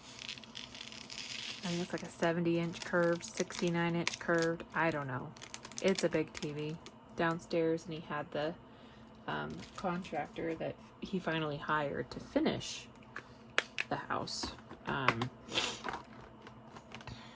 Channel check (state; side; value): identical; both; correlation 1.00